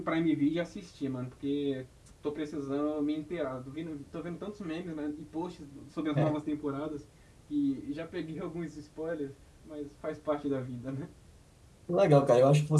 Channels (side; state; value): both; identical; correlation 1.00